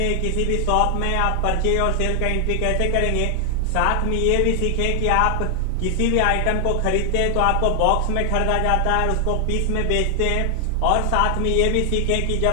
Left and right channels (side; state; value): both; different; correlation 0.00